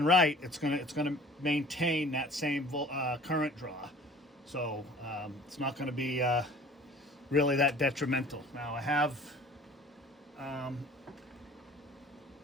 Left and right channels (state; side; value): normal; both; correlation 0.48